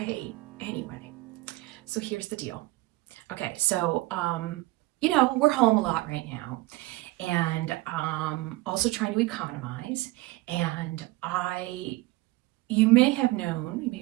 anyway. So here's the deal. Okay, so, we're home a lot right now, and also trying to economize, and you may have known, you may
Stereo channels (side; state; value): left; quieter; 20.0 dB